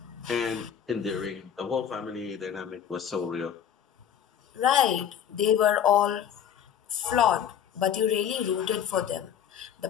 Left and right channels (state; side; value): quieter; right; 9.1 dB